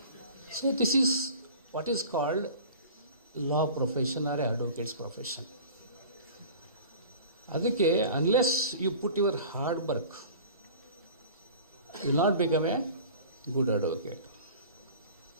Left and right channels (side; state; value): both; inverted; correlation -0.42